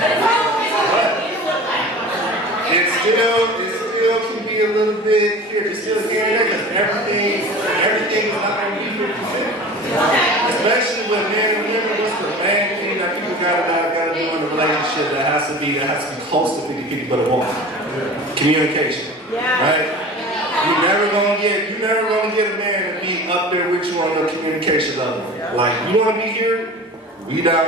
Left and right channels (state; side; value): normal; both; correlation 0.38